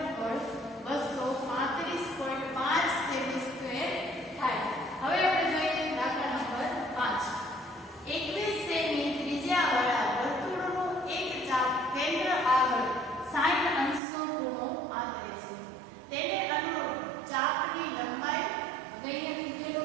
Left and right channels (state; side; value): drops out; left; at 14.0 s